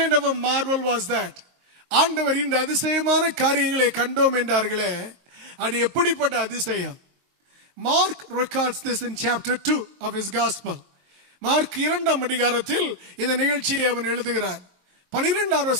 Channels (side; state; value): left; late; 23 ms